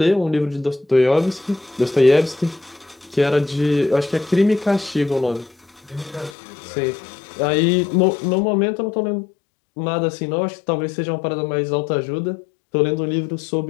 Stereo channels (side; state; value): right; drops out; at 6.3 s